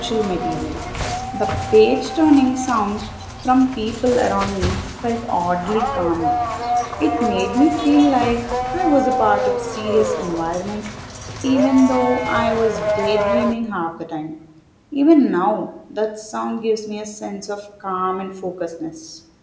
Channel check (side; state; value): both; identical; correlation 1.00